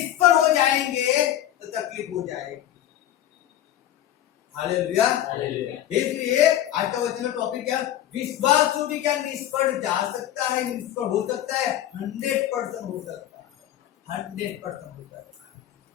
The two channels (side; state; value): right; quieter; 12.1 dB